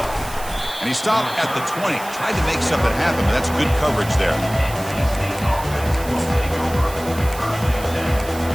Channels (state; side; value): noise; right; hiss, 14 dB below the sound